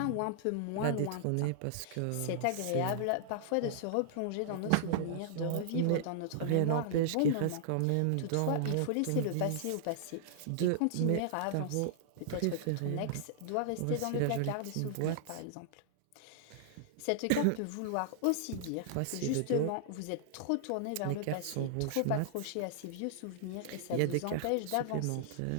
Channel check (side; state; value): both; different; correlation -0.01